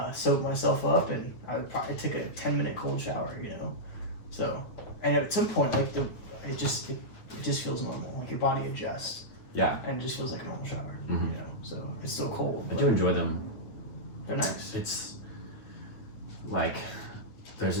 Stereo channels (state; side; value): late; right; 9.4 ms